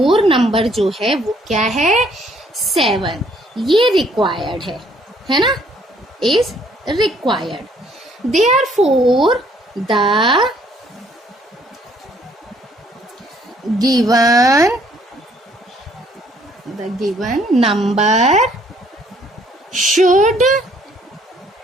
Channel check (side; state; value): both; normal; correlation 0.64